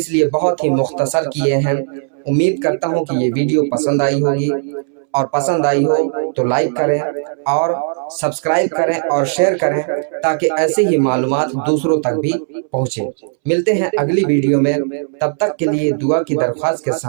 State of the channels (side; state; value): left; silent; 68 dB below the other